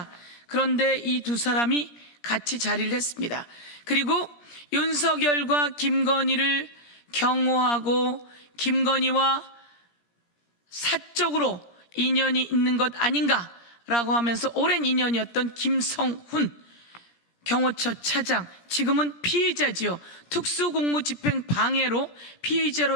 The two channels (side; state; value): right; late; 17 ms